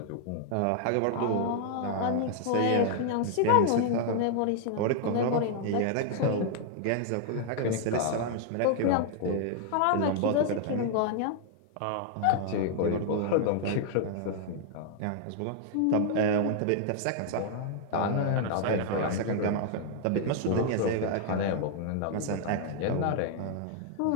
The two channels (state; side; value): different; both; correlation -0.01